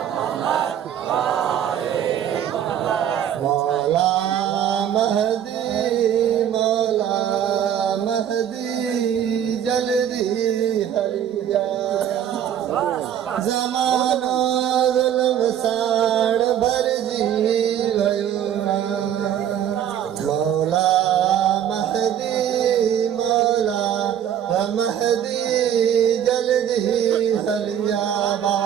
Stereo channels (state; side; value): quieter; left; 9.9 dB